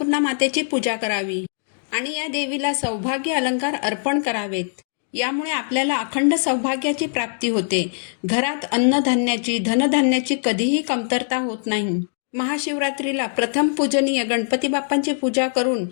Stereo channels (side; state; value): right; silent; digital silence